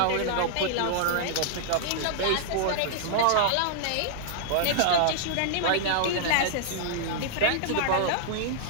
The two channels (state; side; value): different; both; correlation -0.01